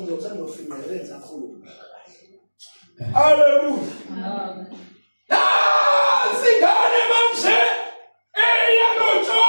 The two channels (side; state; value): both; inverted; correlation -1.00